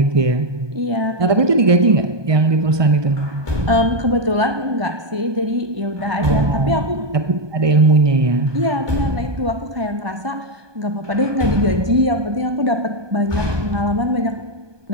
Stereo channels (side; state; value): left; late; 1.2 ms